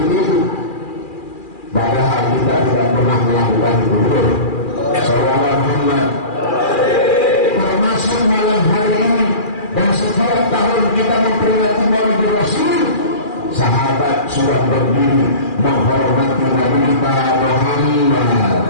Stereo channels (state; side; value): late; right; 2.4 ms